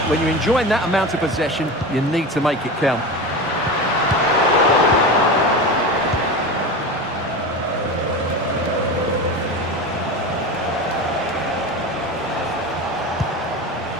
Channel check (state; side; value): normal; both; correlation 0.26